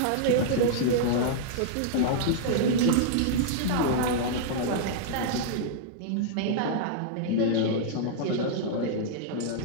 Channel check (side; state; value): both; different; correlation -0.02